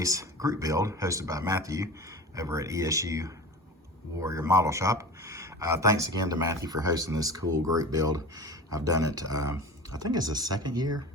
group build hosted by Matthew over at ESU Warrior Model Shop. Thanks again to Matthew for hosting this cool group build. I've done it, I think it's the second year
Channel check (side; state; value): both; normal; correlation 0.34